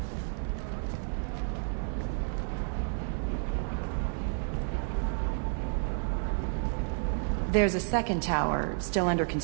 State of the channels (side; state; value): left; silent; 57 dB below the other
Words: There's a second tower, still under